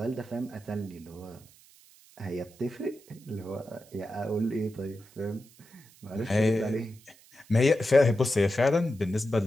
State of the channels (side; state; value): right; noise; hiss, 26 dB below the sound